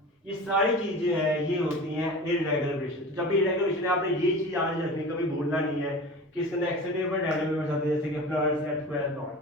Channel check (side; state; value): both; normal; correlation 0.35